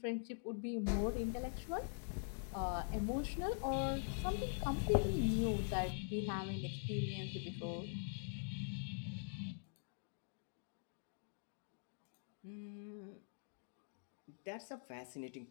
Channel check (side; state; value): right; silent; digital silence